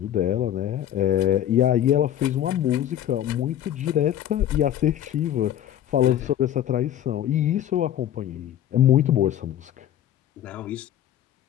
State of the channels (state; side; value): quieter; right; 11.3 dB